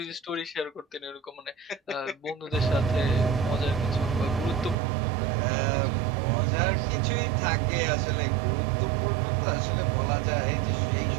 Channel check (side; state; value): left; drops out; at 4.8 s